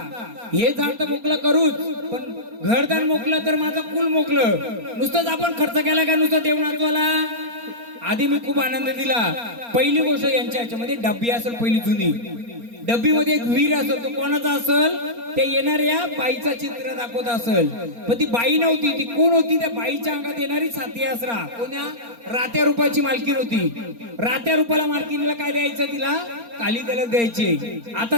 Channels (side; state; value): left; late; 4.3 ms